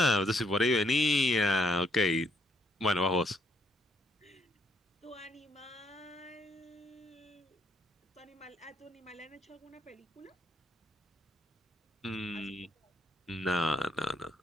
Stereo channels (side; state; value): both; normal; correlation 0.70